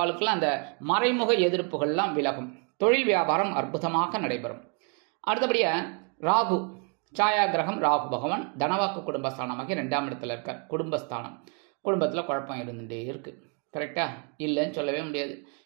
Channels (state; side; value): quieter; left; 37.4 dB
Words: அந்த மறைமுக எதிர்ப்புகள்லாம் விலகும். தொழில் வியாபாரம் அற்புதமாக நடைபெறும். அடுத்தபடியாக ராகு, சாயா கிரகம் ராகு பகவான் தனவாக்கு குடும்பஸ்தானமாகி 2ஆம் இடத்துல இருக்கார். குடும்பஸ்தானம், குடும்பத்தில் குழப்பம் இருந்துகிட்டே இருக்குது. கரெக்டாக இல்லைன்னு சொல்லவே முடியாது.